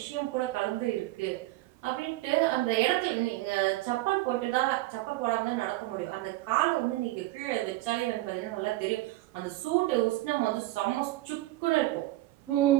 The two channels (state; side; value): quieter; left; 17.7 dB